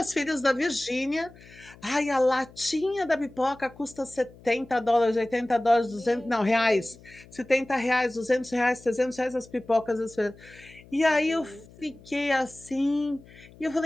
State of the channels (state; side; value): noise; left; hum, 23 dB below the sound